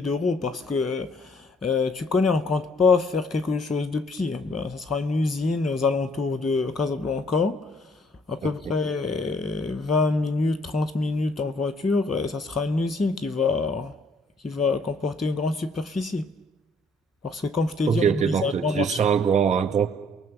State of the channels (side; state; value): both; normal; correlation 0.63